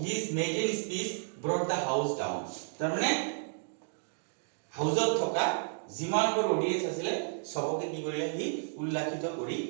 his maiden speech brought the house down তাৰ মানে হাউজত থকা যিমানবোৰ অডিয়েন্স আছিল সবকে কি কৰিলে হি উল্লাসিত কৰি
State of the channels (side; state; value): left; silent; digital silence